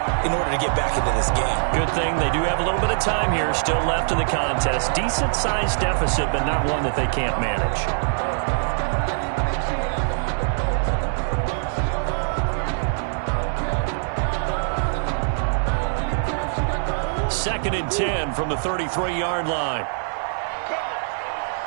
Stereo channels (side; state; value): left; silent; digital silence